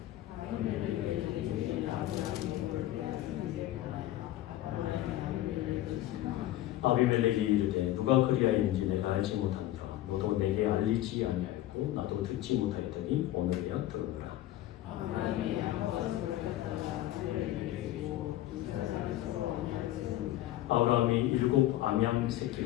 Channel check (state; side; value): quieter; right; 14.5 dB